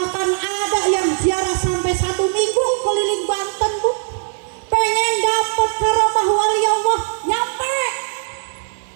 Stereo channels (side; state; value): left; silent; 64 dB below the other